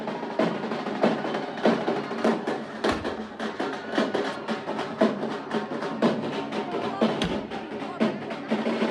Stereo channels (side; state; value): both; identical; correlation 1.00